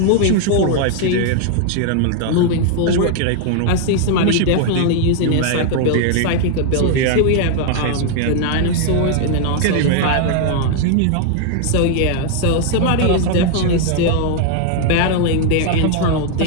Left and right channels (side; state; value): both; different; correlation 0.00